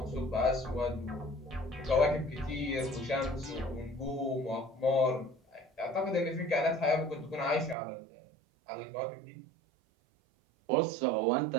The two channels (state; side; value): drops out; left; at 7.8 s